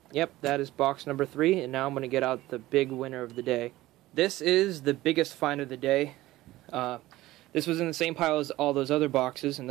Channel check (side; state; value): left; quieter; 17.0 dB